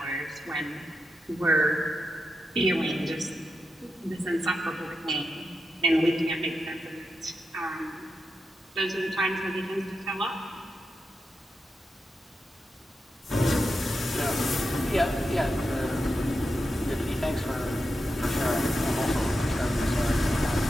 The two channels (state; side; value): normal; both; correlation 0.88